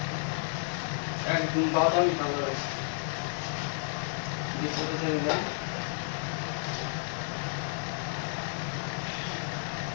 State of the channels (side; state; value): right; silent; 57 dB below the other